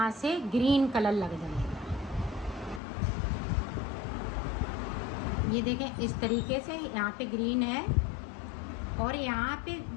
से ग्रीन कलर लग जाएगा। ये देखें इस तरीके से यहाँ पे ग्रीन है और यहाँ पे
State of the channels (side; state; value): right; drops out; at 2.8 s